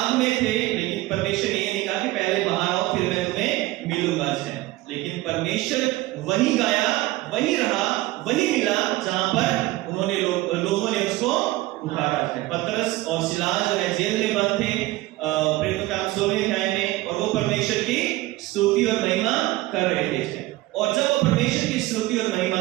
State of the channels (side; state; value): left; quieter; 18.3 dB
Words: में थे, लेकिन परमेश्वर ने ये नहीं कहा कि पहले बाहर आओ फिर मैं तुम्हें मिलूंगा। है लेकिन परमेश्वर वही गाया, वही रहा, वही मिला जहां पर उन्होंने लोगों ने उसको पुकारा है। पतरस और सिलास जो है जेल में बंद थे प्रेरितों का 16वें अध्याय में, और वो परमेश्वर की स्तुति और महिमा कर रहे थे। और जब वो परमेश्वर की स्तुति और महिमा